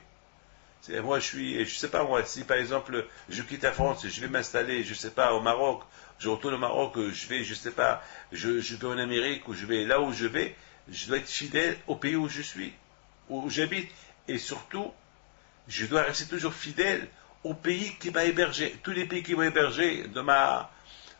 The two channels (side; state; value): right; silent; digital silence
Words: Moi, je sais pas moi, si par exemple je quitte la France, je vais m'installer, je sais pas, au Maroc, je retourne au Maroc, je vais, je sais pas, je vais en Amérique ou je vais là où je vais. Je dois être fidèle au pays où je suis, où j'habite. Et surtout, je dois rester toujours fidèle au pays qui m'a hébergé. Tous les pays qui m'ont hébergé